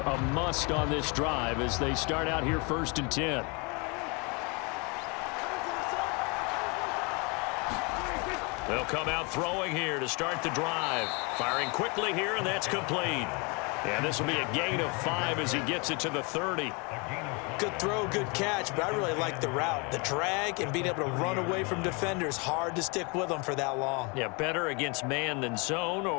must on this drive as they start out here 1st and 10. They'll come out throwing here to start the drive. Firing quickly here, and that's complete. And this will be a gain of 5 as he gets it to the 30. Good throw, good catch, but I really like the route. The drag and being able to run away from defenders, hard to stick with them for that long. Yeah, better against man than zone,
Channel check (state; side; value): quieter; right; 30.8 dB